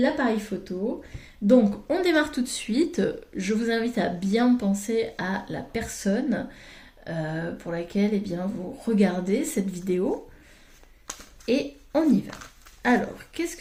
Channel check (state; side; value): identical; both; correlation 1.00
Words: photo. Donc, on démarre tout de suite. Je vous invite à bien penser à la personne pour laquelle eh bien, vous regardez cette vidéo. Et on y va. Alors, qu'est-ce